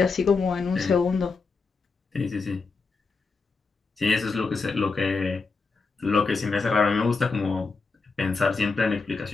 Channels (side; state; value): right; quieter; 4.4 dB